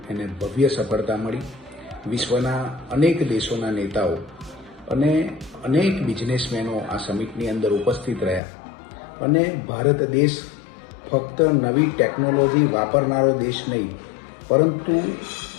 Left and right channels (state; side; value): drops out; right; at 8.4 s